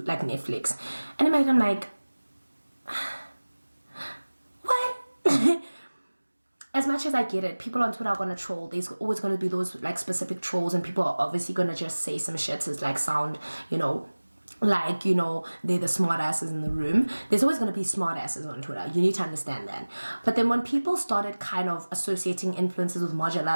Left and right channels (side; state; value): both; inverted; correlation -1.00